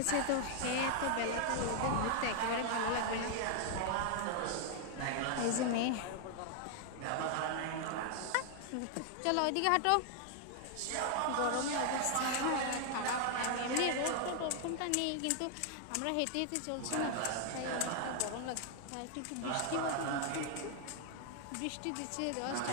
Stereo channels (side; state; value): both; different; correlation 0.00